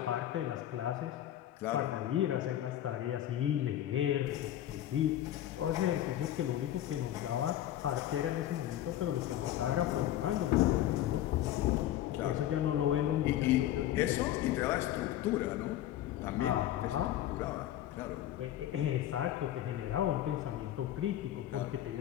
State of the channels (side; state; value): right; quieter; 12.6 dB